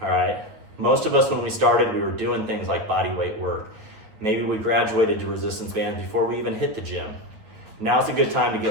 right? Most of us, when we started, we were doing things like body weight work. Maybe we graduated to resistance bands before we even hit the gym. Now's a good time to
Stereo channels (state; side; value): late; left; 9.4 ms